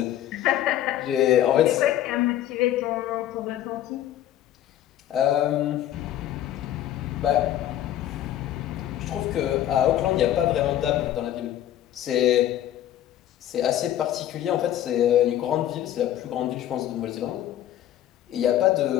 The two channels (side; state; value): right; quieter; 12.2 dB